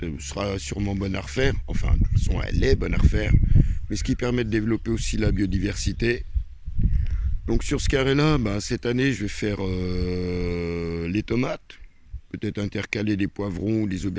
sera sûrement bonne à refaire. Enfin, de toute façon, elle est bonne à refaire. Mais ce qui permet de développer aussi la biodiversité. Donc sur ce carré-là, cette année, je vais faire les tomates. Peut-être intercaler des poivrons ou des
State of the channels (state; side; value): identical; both; correlation 1.00